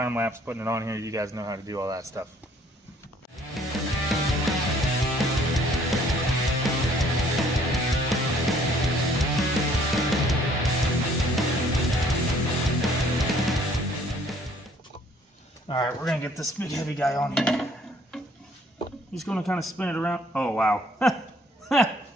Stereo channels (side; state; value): both; normal; correlation 0.60